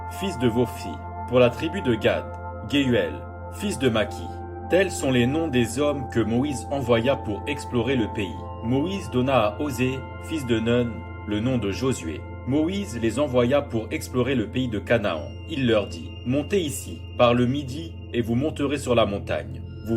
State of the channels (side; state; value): both; identical; correlation 1.00